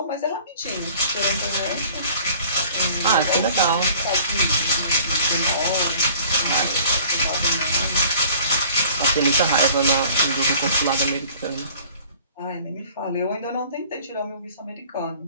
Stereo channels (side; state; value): both; inverted; correlation -0.51